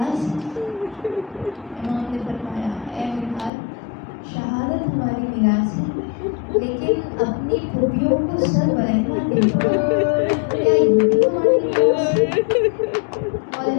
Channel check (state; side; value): drops out; right; at 3.5 s